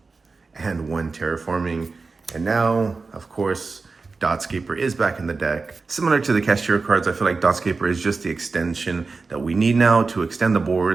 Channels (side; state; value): left; quieter; 4.2 dB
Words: and 1 Terraforming. And now, of course, Dotscaper is back in the deck. Similar to the Kashtira cards, I feel like Dotscaper is just the extension that we need now to extend the